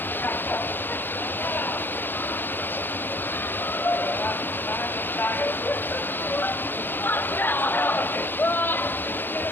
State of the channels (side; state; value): right; late; 0.098 ms